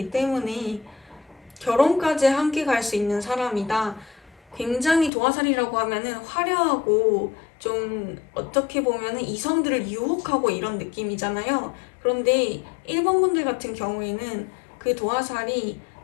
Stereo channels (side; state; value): right; drops out; at 5.1 s